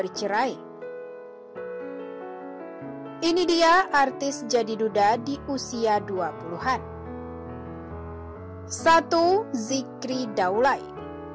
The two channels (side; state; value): both; identical; correlation 1.00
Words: Ini dia artis jadi duda di usia 20-an. 1. Zikri Daulay.